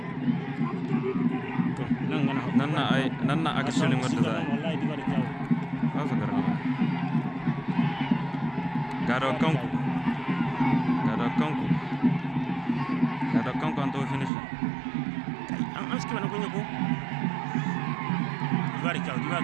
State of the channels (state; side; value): drops out; left; at 14.3 s